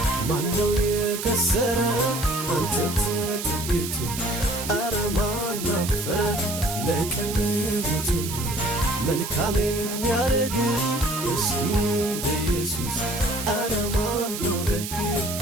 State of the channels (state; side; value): noise; right; hiss, 7 dB below the sound